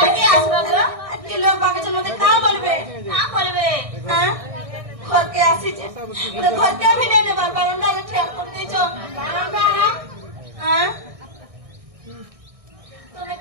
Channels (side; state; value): left; late; 1.6 ms